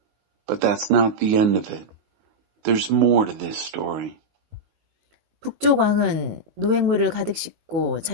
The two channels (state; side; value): late; left; 19 ms